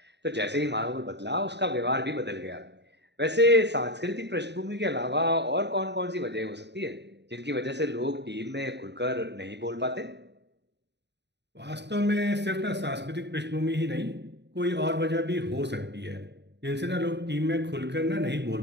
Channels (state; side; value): late; left; 0.50 ms